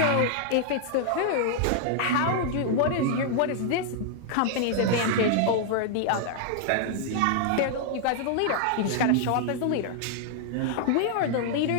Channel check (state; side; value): different; both; correlation -0.01